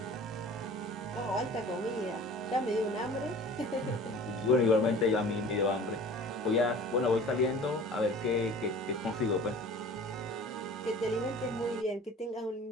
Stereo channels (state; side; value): normal; both; correlation 0.43